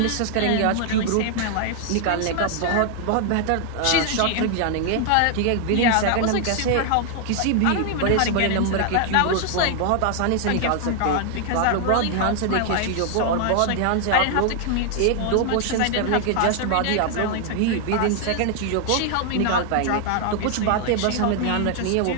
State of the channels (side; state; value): both; different; correlation 0.00